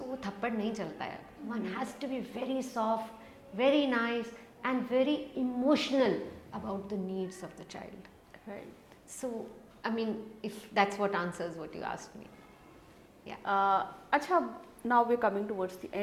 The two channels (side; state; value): both; identical; correlation 1.00